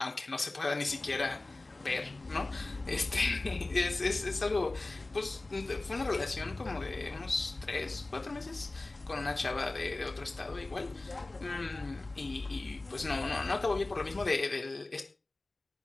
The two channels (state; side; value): quieter; right; 3.0 dB